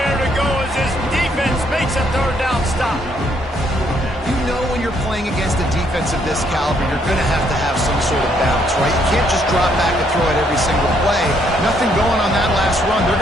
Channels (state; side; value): normal; both; correlation 0.70